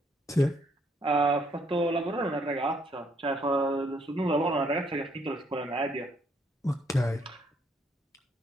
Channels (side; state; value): both; normal; correlation 0.69